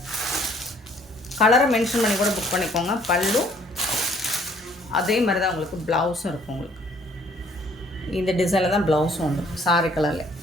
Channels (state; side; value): normal; both; correlation 0.60